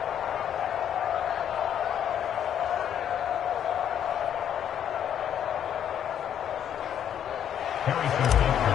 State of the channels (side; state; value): right; quieter; 9.5 dB